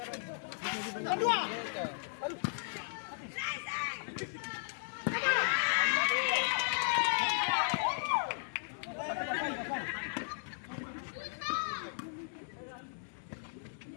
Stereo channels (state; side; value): silent; right; 54 dB below the other